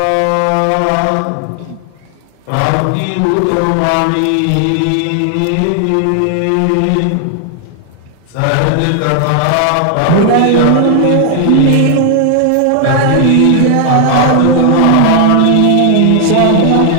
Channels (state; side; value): different; both; correlation 0.00